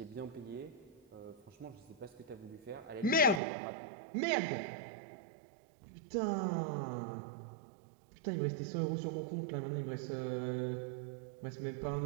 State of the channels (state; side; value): drops out; left; at 3.4 s